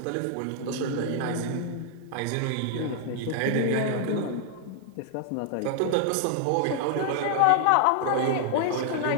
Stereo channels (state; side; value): different; both; correlation 0.00